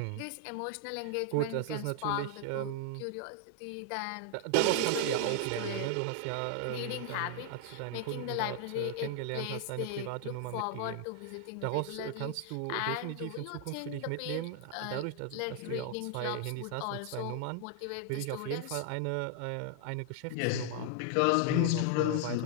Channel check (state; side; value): different; both; correlation 0.00